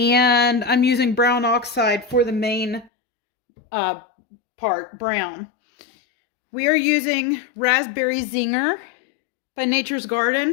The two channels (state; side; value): drops out; right; at 2.9 s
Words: I'm using brown oxide for the main part, brown. We are using Raspberry Zinger by Nature's